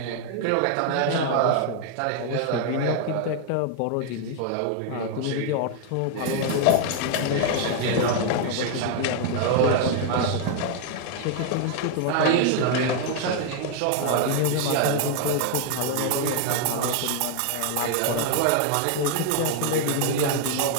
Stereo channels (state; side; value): different; both; correlation 0.00